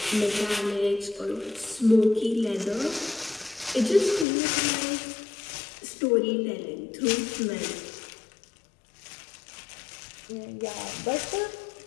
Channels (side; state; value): right; drops out; at 4.2 s